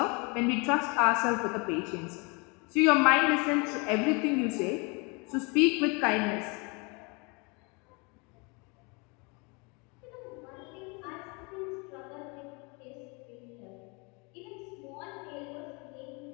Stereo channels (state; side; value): quieter; right; 30.4 dB